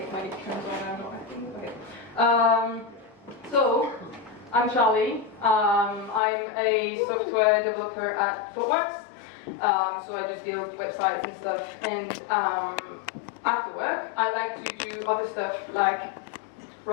when it turns on and not acting. Okay. So I'm Charlie. I'm a software developer at ThoughtWorks. So I just build websites and stuff. And after work, I like to do other stuff like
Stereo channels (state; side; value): drops out; right; at 6.2 s